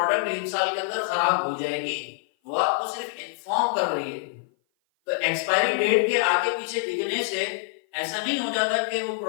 1 سال کے اندر خراب ہو جائے گی، وہ آپ کو صرف انفارم کر رہی ہے. تو ایکسپائری ڈیٹ کے آگے پیچھے لکھنے سے ایسا نہیں ہو جاتا کہ وہ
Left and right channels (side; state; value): right; silent; 56 dB below the other